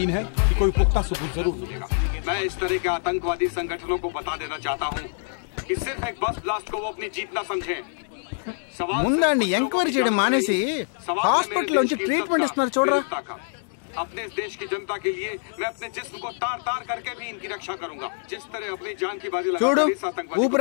है कि कोई पुख्ता सबूत जरूर मिलेगा। मैं इस तरह के आतंकवादी संगठनों को बता देना चाहता हूँ कि सिर्फ एक बस ब्लास्ट को वो अपनी जीत ना समझें। ముందండి ఎంక్వైరీ చేయడం మానేసి హాస్పిటల్ నుంచి ట్రీట్మెంట్ ఇస్తున్నారు చూడరా. अपने देश की जनता के लिए मैं अपने जिस्म को तार तार करके भी इनकी रक्षा करूंगा। जिस तरह अपनी जान की बाजी చూడు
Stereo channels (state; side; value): silent; right; digital silence